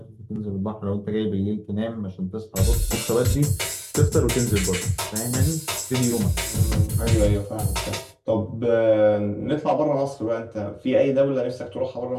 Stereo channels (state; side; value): identical; both; correlation 1.00